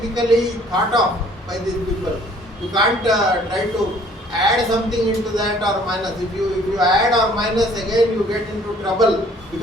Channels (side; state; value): both; normal; correlation 0.57